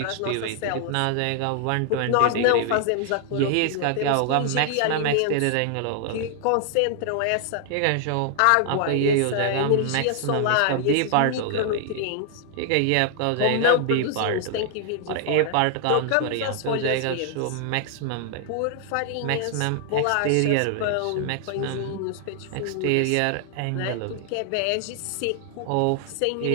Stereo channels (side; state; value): both; different; correlation 0.00